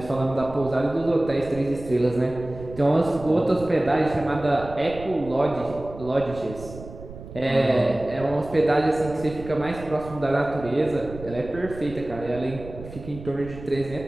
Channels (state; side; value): noise; right; rumble, 14 dB below the sound